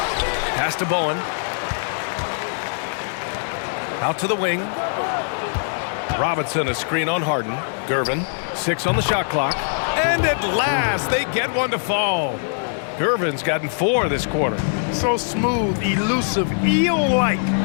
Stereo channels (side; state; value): right; silent; digital silence